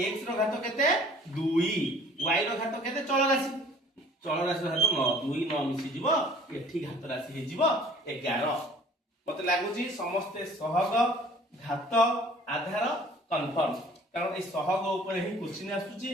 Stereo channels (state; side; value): normal; both; correlation 0.51